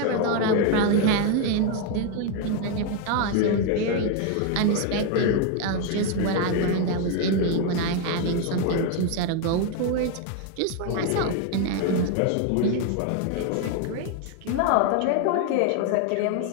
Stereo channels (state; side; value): different; both; correlation 0.01